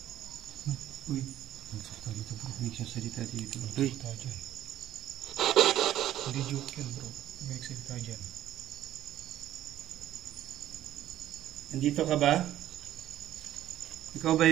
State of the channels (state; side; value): quieter; left; 12.7 dB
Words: Uy, nagsalita dito bro. May nagsalita dito. Uy. Nagsalita dyan. Hindi joke yan bro. May nagsalita dyan. Nandito ka ba? Ikaw ba